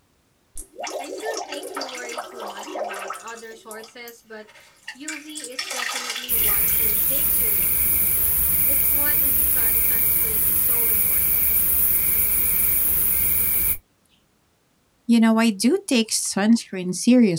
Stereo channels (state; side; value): identical; both; correlation 1.00